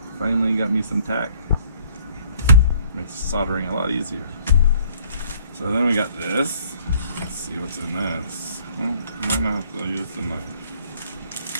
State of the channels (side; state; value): both; inverted; correlation -0.59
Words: Finally got me some tack. Makes soldering a lot easier. So then we got this. Let's see what's in this. Well, might not have to use the knife.